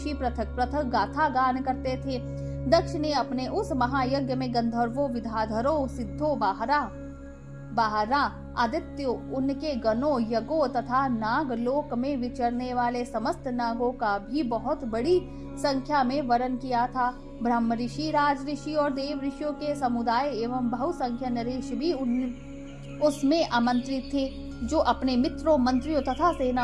पृथक पृथक गाथा गान करते थे। दक्ष ने अपने उस महायज्ञ में गंधर्वों, विद्याधरों, सिद्धों, बाहरा, आदित्यों, उनके गणों, यज्ञों तथा नाग लोक में विचरने वाले समस्त नागों का भी बहुत बड़ी संख्या में वरण किया था। ब्रह्म ऋषि, राज ऋषि और देव ऋषियों के समुदाय एवं बहुसंख्य नरेश भी उसमें आमंत्रित थे, जो अपने मित्रों, मंत्रियों तथा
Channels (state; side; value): identical; both; correlation 1.00